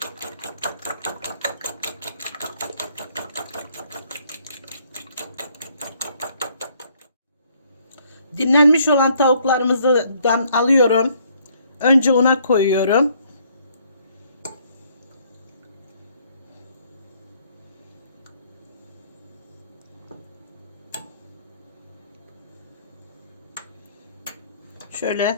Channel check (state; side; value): inverted; both; correlation -0.65